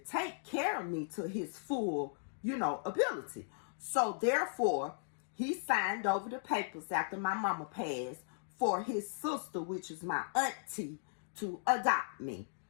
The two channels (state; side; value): silent; right; digital silence